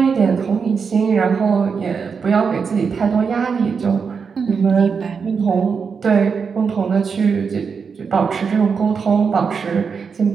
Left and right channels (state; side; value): quieter; left; 5.8 dB